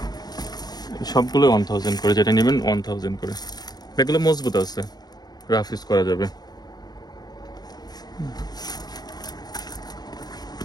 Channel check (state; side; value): late; right; 0.19 ms